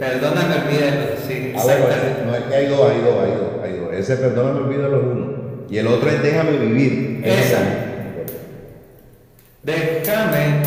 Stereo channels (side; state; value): both; identical; correlation 1.00